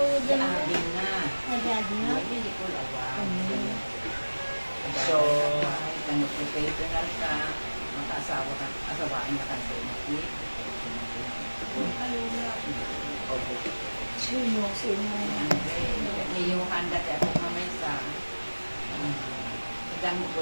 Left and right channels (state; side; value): inverted; both; correlation -1.00